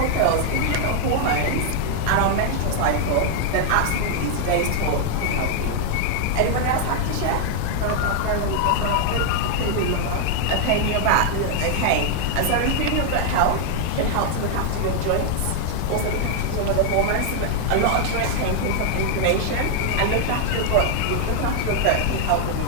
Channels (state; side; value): different; both; correlation 0.00